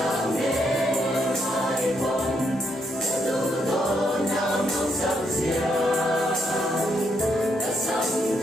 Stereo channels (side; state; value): both; normal; correlation 0.76